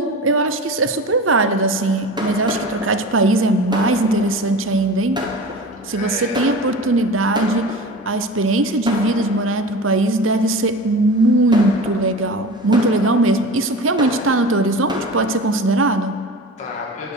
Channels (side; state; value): both; normal; correlation 0.33